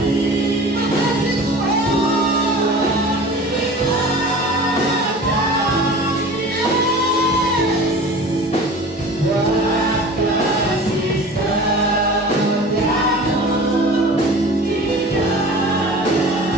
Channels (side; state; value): both; normal; correlation 0.39